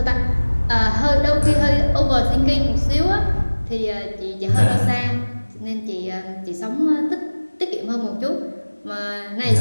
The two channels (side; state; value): both; inverted; correlation -1.00